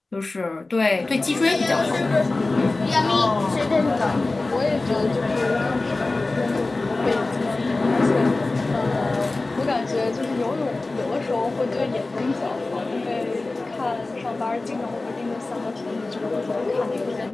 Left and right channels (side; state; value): right; quieter; 3.2 dB